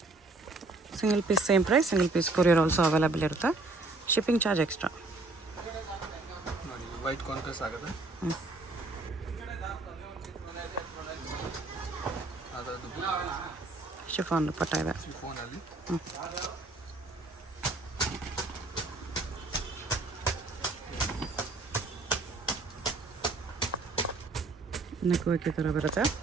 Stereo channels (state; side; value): quieter; left; 3.2 dB